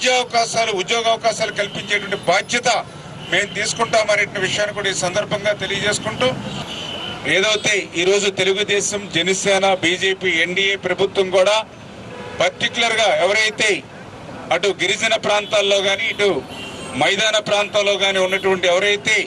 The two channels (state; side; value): identical; both; correlation 1.00